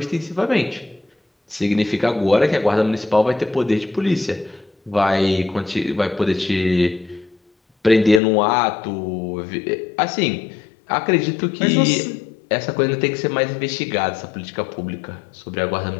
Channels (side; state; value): right; drops out; at 8.2 s